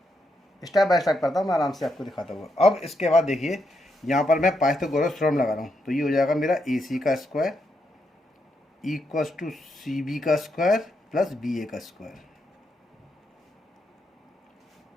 स्टेप बाय स्टेप करता हूँ मैं, आराम से आपको दिखाता हूँ। अब इसके बाद देखिए यहाँ पर मैं पाइथागोरस थ्योरम लगा रहा हूँ, तो ये हो जाएगा मेरा ए सी का square equals to C B का स्क्वायर प्लस बी ए का स्क्वायर।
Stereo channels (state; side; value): normal; both; correlation 0.81